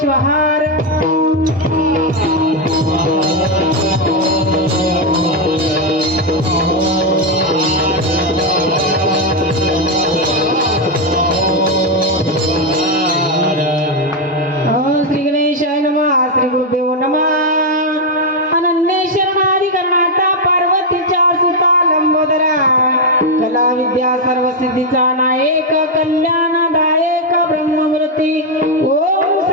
श्वहार श्री गणेशाय नमः श्री गुरुदेव नमः अनन्य शरणाधिकरणाता पार्वतीच्या सुता लंबोदरा कला विद्या सर्व सिद्धीचा नायक कल्याणदायक ब्रह्ममूर्ती ओम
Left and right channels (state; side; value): normal; both; correlation 0.03